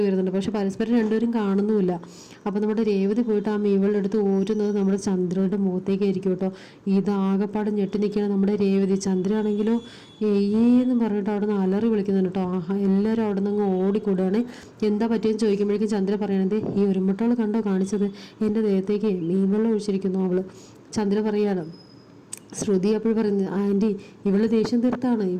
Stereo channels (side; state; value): both; identical; correlation 1.00